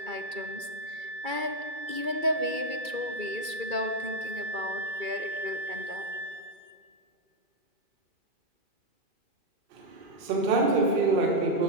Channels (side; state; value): left; late; 2.3 ms